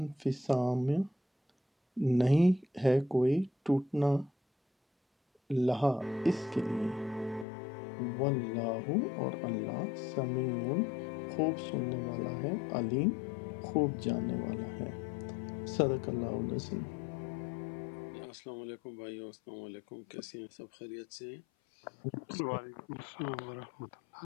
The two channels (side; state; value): right; drops out; at 7.5 s